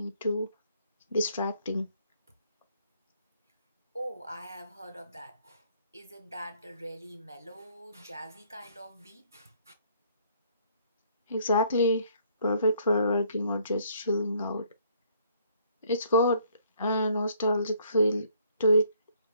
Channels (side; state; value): both; inverted; correlation -0.64